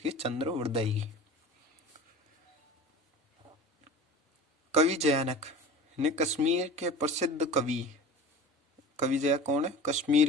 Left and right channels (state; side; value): normal; both; correlation 0.36